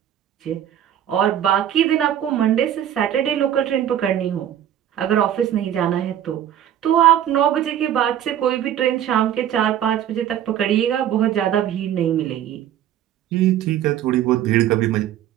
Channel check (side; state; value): left; quieter; 10.8 dB